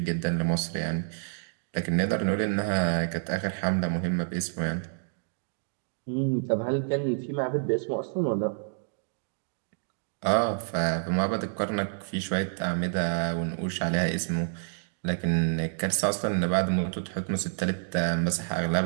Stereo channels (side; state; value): left; silent; digital silence